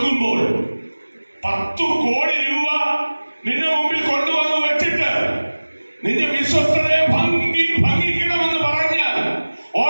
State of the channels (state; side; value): inverted; both; correlation -1.00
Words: 10 കോടി രൂപ നിന്റെ മുമ്പിൽ കൊണ്ടുവന്ന് വെച്ചിട്ട് നിന്റെ വിശ്വസ്തതയെ ഭംഗിക്കണമെന്ന് പറഞ്ഞാൽ